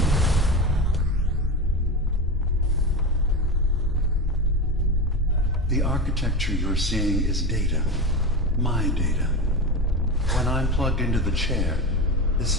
The architecture you're seeing is data. My data. When I'm plugged into the chair,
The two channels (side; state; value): both; normal; correlation 0.22